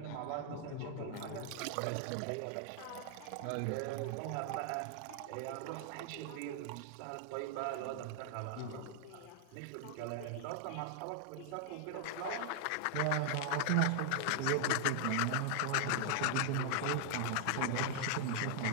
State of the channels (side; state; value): both; different; correlation 0.00